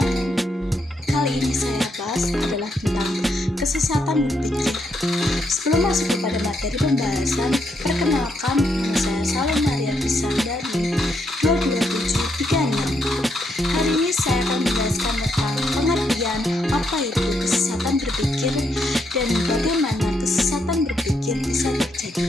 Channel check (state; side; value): normal; both; correlation 0.77